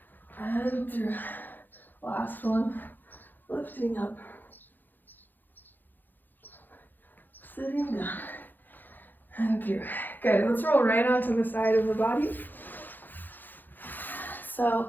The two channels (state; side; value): late; right; 0.088 ms